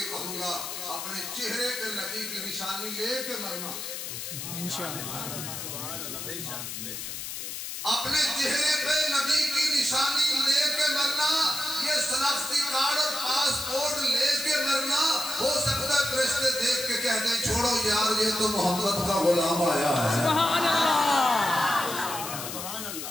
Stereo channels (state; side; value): noise; left; hiss, 7 dB below the sound